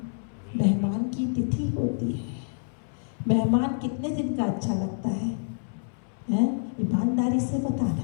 मेहमान की तिथि होती है। मेहमान कितने दिन का अच्छा लगता है? ईमानदारी से बताना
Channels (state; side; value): silent; right; 60 dB below the other